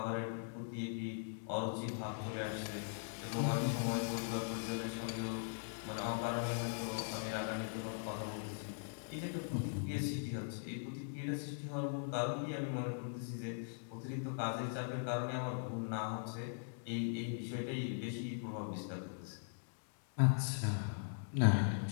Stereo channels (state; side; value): silent; right; digital silence